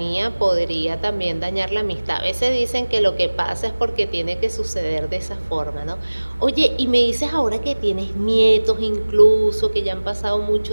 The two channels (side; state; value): both; inverted; correlation -1.00